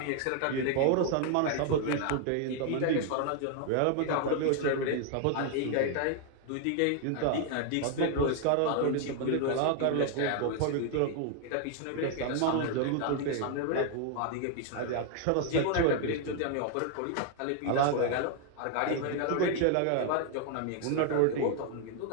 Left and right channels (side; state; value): both; different; correlation 0.00